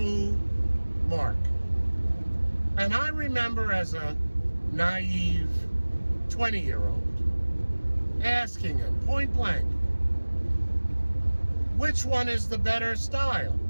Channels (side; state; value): both; inverted; correlation -1.00